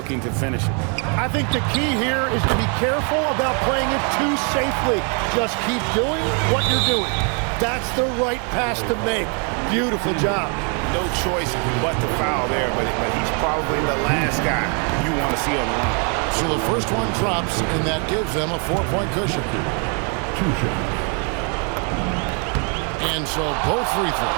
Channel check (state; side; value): quieter; left; 38.1 dB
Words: to finish it. I think the key here is to be careful about playing it too safely. Just keep doing what you're doing. That's the right pass to make. Beautiful job. No choice but to foul there, but he's probably the last guy you want to see on the line. So the first one drops, and that gives them a 4-point cushion. 2 shots. And so both free